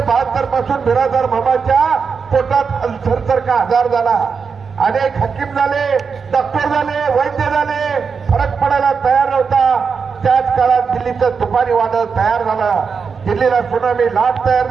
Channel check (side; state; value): left; quieter; 5.6 dB